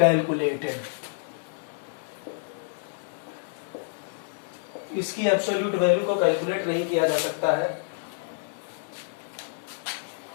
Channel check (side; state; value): right; silent; digital silence